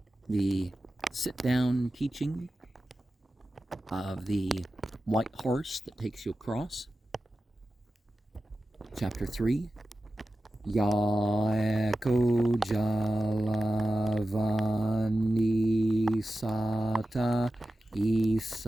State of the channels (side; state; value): both; normal; correlation 0.93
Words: the sit-down teaching of the white horse that takes you across. Chapter 3. Yaeko Jalavani Sata